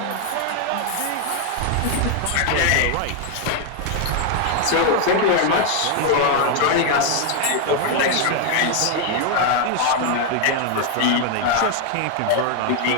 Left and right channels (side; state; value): both; different; correlation 0.01